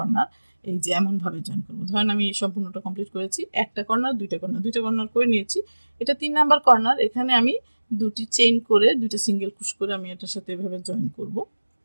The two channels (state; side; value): inverted; both; correlation -1.00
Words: এই যে এমনভাবে জয়েন করবো। ধরেন আমি সম্পূর্ণটা কমপ্লিট করেছি, একটা কর্নার দুইটা কর্নার করে নিয়েছি, এটা 3 নাম্বার কর্নার। এখানে আমি দুটি চেইন করে দুইটা সিঙ্গেল ক্রোশ করে আমি এটার সাথে এভাবে জয়েন করব,